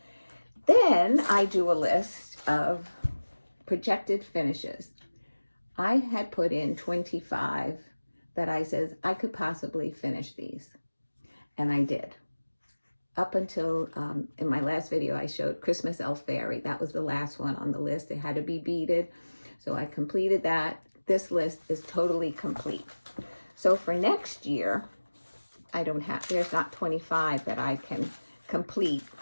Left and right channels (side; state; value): both; inverted; correlation -1.00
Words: Then then I do a list of projected finishes. I had put in 25 that I says I could possibly finish these, and I did. Up until, in my last video, I showed Christmas Elf Fairy. That was the last one on the list. It had to be beaded, so I completed that. This list is totally complete. So for next year, there's not 25 that I can complete